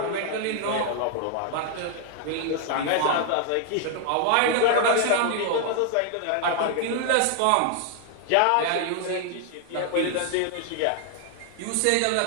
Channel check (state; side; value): different; both; correlation 0.00